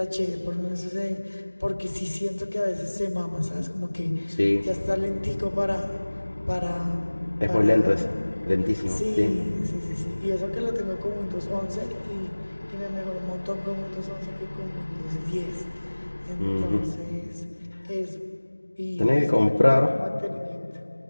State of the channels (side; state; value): both; inverted; correlation -1.00